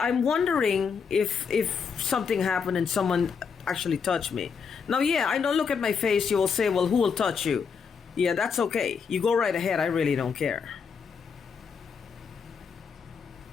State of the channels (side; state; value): right; quieter; 6.1 dB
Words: I'm wondering if something happened and someone actually touched me. Now, yeah, I don't look at my face. You will say, well, who will touch you? Yeah, that's okay. You go right ahead. I really don't care.